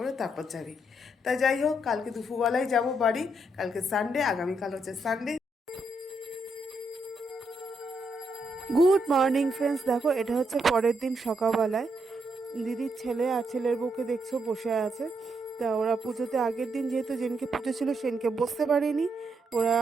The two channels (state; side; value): normal; both; correlation 0.78